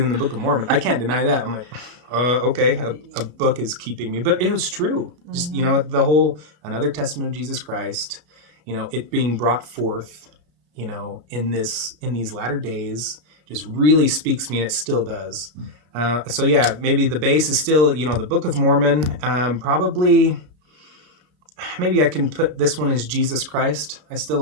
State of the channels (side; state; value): left; late; 33 ms